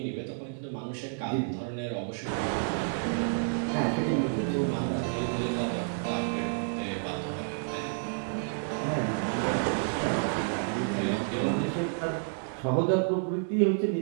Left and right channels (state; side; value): silent; left; digital silence